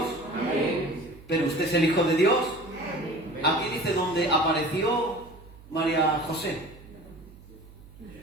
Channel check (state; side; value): noise; right; hum, 21 dB below the sound